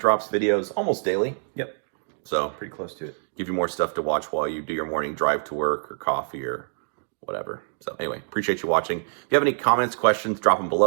videos almost daily. Yep. So Pretty close to it. give you more stuff to watch while you do your morning drive to work or coffee or whatever. So anyway, appreciate you watching. If you have any comments, questions, drop them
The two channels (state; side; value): silent; left; digital silence